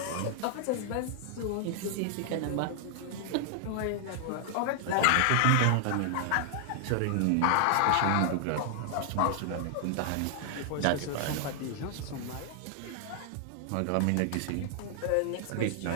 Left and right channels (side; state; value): both; different; correlation 0.00